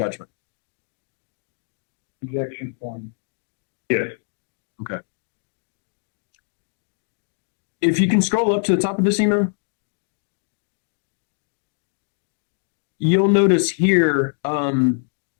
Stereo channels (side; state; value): right; silent; digital silence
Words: Objection, form. Yes. Okay. If you can scroll up to the top of this email, you'll notice here,